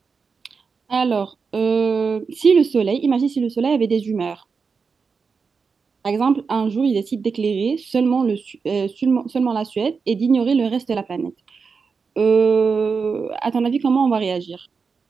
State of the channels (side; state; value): left; quieter; 5.3 dB